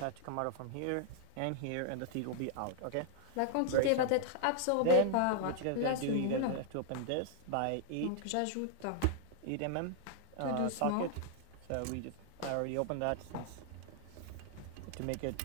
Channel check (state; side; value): different; both; correlation -0.01